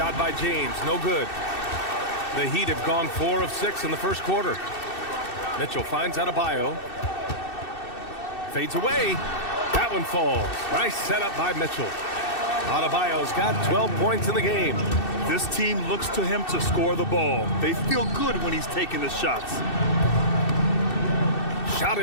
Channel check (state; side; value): late; right; 2.6 ms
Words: by James, no good. The Heat have gone 4 of 6 in the first quarter. Mitchell finds Adebayo. Fades away. That one falls. Nice setup by Mitchell. Adebayo's got 12 points in the game. This team looks to him to score the ball. They feel good when he's taking the shots. Shot